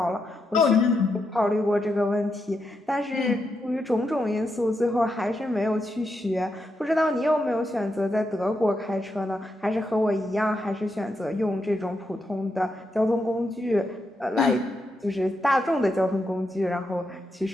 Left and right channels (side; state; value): both; normal; correlation 0.83